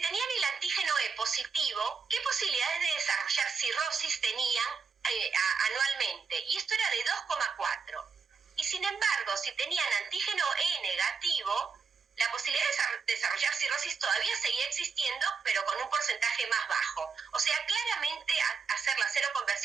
el antígeno E positivo, qué posibilidades de desarrollar cirrosis tenían anualmente. Y esto era de 2,4. Y sin embargo, si tenían antígeno E negativo, la posibilidad de desarrollar cirrosis todavía seguía existiendo, pero con un porcentaje más bajo. O sea, claramente hacer la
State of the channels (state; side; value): quieter; left; 5.5 dB